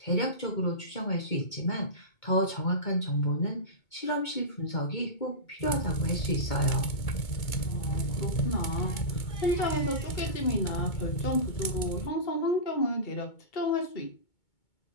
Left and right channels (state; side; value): late; right; 2.2 ms